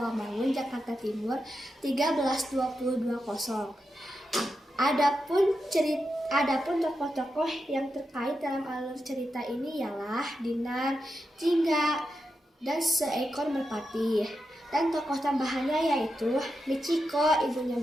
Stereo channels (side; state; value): both; normal; correlation 0.87